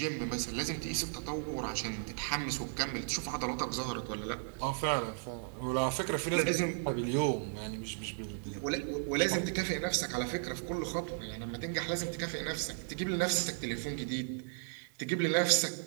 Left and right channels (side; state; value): left; silent; 54 dB below the other